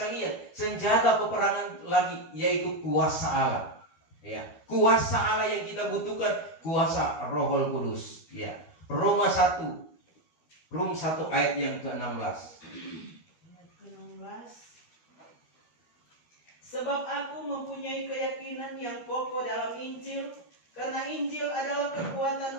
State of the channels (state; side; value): late; right; 12 ms